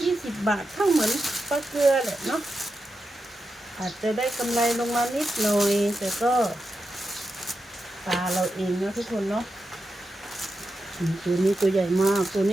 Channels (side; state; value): both; normal; correlation 0.89